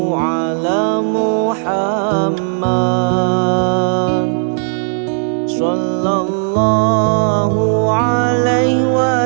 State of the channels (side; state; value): left; silent; 59 dB below the other